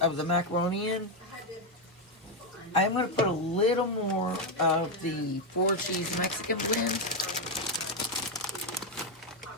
of the macaroni in. I'm going to put a little more of the 4 cheese Mexican blend.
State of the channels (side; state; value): both; normal; correlation 0.06